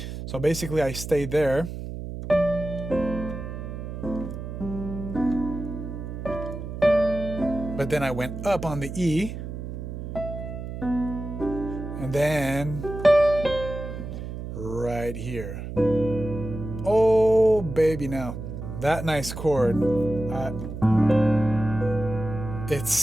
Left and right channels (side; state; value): right; noise; hum, 8 dB below the sound